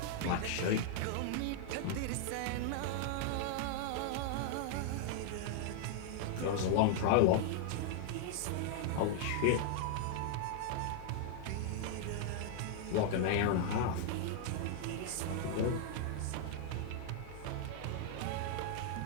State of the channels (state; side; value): different; both; correlation 0.00